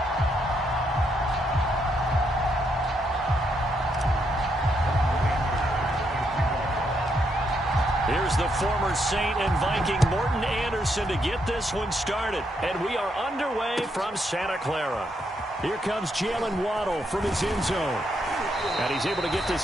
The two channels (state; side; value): normal; both; correlation 0.77